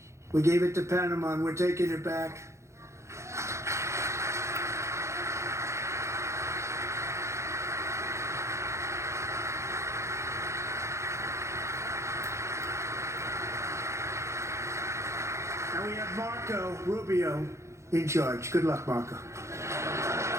We gave it to Panama, and we're taking it back. And we have Marco Rubio in charge. Good luck, Marco.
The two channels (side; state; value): left; late; 0.14 ms